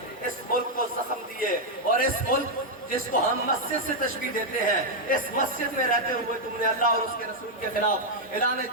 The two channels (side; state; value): both; normal; correlation -0.01